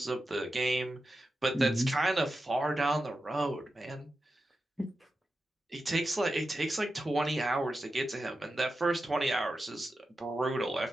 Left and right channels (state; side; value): normal; both; correlation 0.91